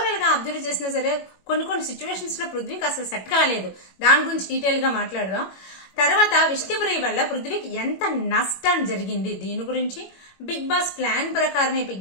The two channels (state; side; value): late; right; 21 ms